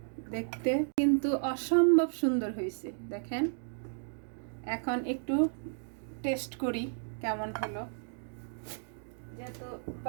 দেখতে কিন্তু অসম্ভব সুন্দর হয়েছে। দেখেন এখন একটু টেস্ট করি কেমন হলো, যেহেতু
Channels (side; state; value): left; silent; digital silence